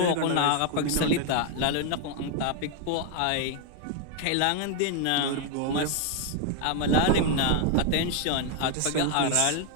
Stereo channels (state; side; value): different; both; correlation 0.00